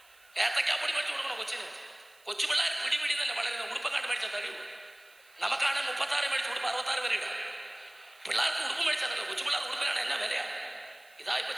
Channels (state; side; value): noise; right; hiss, 28 dB below the sound